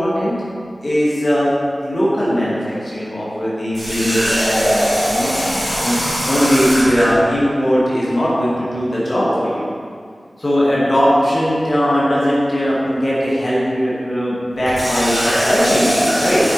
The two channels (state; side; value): normal; both; correlation 0.97